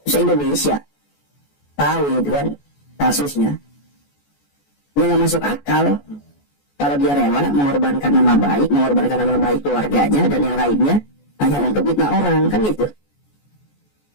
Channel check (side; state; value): right; late; 14 ms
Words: se-Indonesia tahu gitu kan kasusnya. Dia nggak masuk akal kalau dia rela mengorbankan nama baik keluarganya dan yang lainnya hanya untuk fitnah orang, kan gitu.